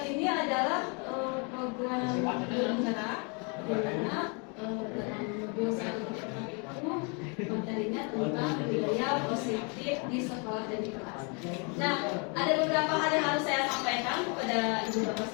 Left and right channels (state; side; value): quieter; right; 34.6 dB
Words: Ini adalah program berbicara di mana dalam modul 1 itu materinya tentang budaya positif di sekolah dan di kelas. Nah, ada beberapa hal yang harus saya sampaikan kepada ibu bapak